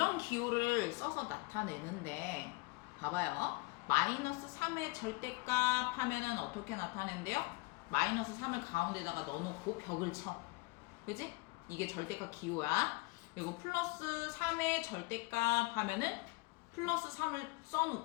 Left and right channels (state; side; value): quieter; right; 24.4 dB